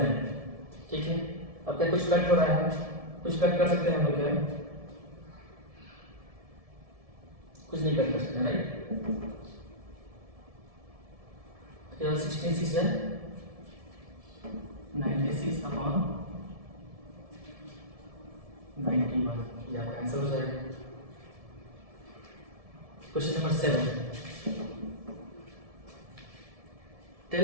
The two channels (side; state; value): left; late; 1.7 ms